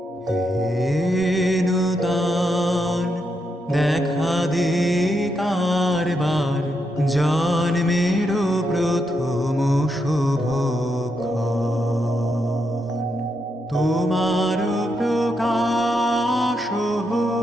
নূতন দেখা দে কারবার, জন্মের প্রথম শুভক্ষণ। তোমার প্রকাশ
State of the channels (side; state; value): both; normal; correlation 0.82